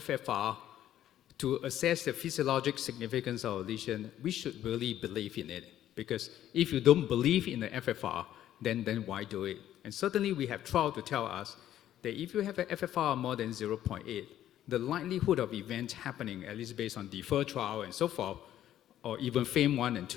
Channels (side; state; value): right; quieter; 12.0 dB